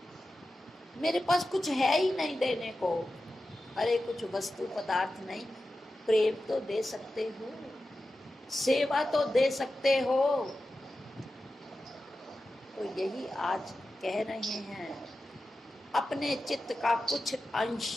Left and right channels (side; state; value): both; normal; correlation 0.93